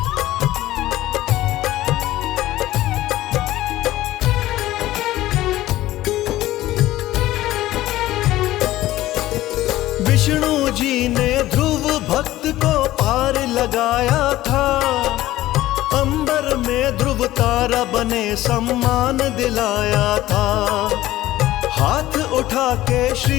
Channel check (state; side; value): quieter; right; 15.6 dB